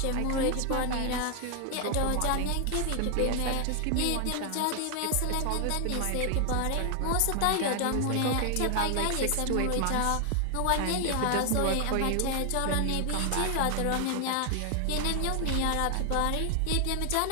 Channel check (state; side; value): different; both; correlation 0.00